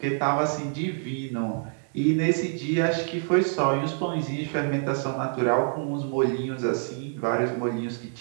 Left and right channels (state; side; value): silent; left; 61 dB below the other